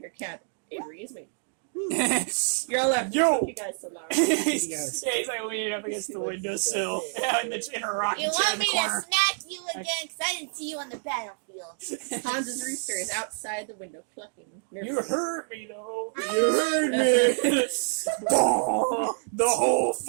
cabin. Avery is waiting. You're all left. Yo! You guys so loud. he's, yeah, he's like leaning up against the windowsill. Yeah, in her rocking You chair want in me the to corner. smack you again? Because I didn't see you on the battlefield. Hans's rooster is outside the window clucking. You heard me, though. You heard me. Oh, the whole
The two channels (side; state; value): left; silent; 60 dB below the other